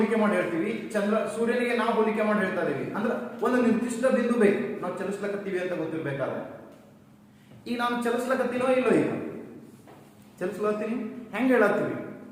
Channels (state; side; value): identical; both; correlation 1.00